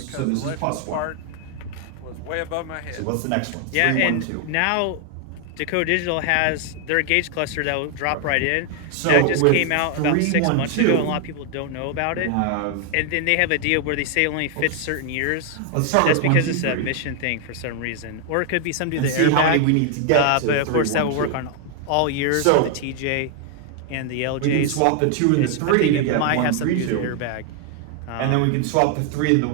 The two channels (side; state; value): both; different; correlation 0.00